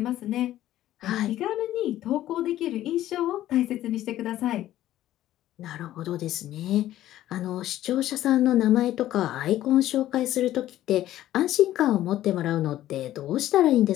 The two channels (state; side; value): quieter; right; 13.6 dB